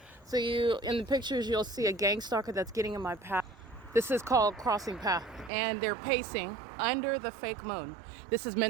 So in the pictures, you'll see a gang stalker that's getting in my path. This is called crossing path, and they're pacing under the fake moon. This is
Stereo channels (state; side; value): drops out; left; at 5.5 s